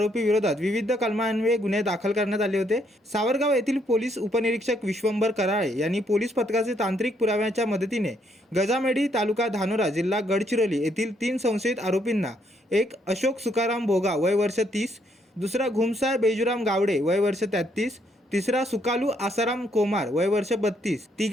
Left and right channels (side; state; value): both; normal; correlation 0.72